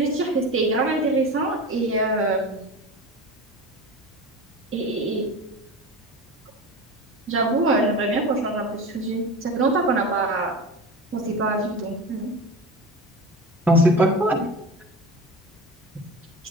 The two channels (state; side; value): normal; both; correlation 0.30